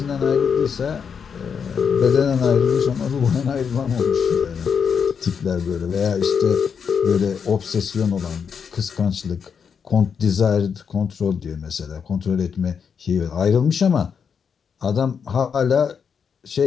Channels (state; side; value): quieter; right; 6.7 dB